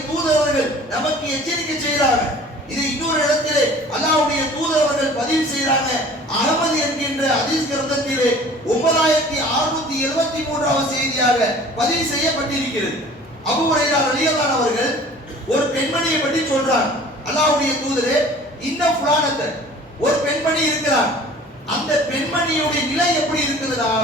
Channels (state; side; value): normal; both; correlation 0.47